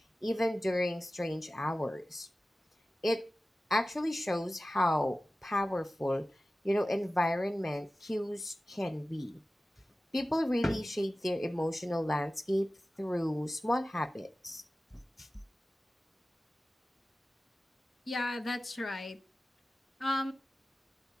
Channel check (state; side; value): normal; both; correlation 0.96